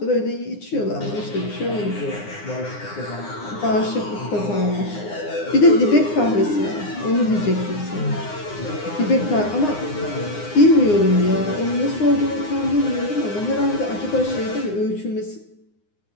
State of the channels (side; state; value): right; late; 9.7 ms